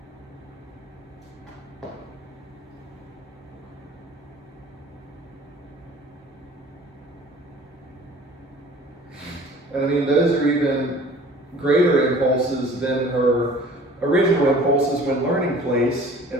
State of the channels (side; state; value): both; normal; correlation 0.48